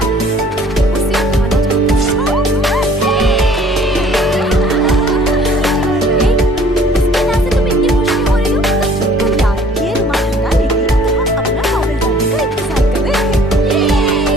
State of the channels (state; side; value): normal; both; correlation 0.54